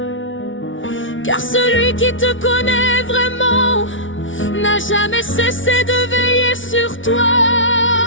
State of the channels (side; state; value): right; late; 0.56 ms